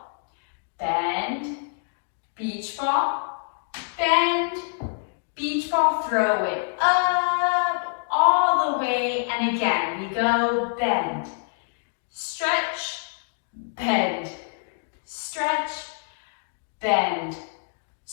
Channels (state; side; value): silent; right; digital silence